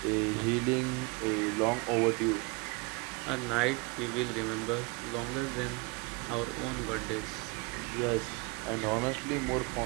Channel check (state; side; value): quieter; left; 27.6 dB